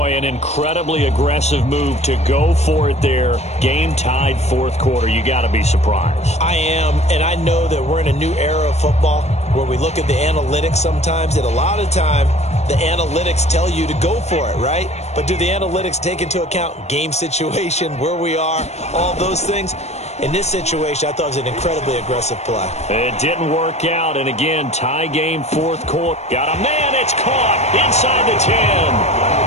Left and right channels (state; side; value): late; right; 0.32 ms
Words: an incredibly aggressive move to go for it there. Game tied 4th quarter. You got to be surprised. I am, and I know that we're in a new era of football where we look at the analytics sometimes, and a lot of time the analytics tell you to go for it, right? But do the analytics take into account game situation, where we are, all those things? In this situation, I thought it was an incredibly aggressive play. It didn't work out, and again, tie game 4th quarter. Got a man, it's caught inside the 10.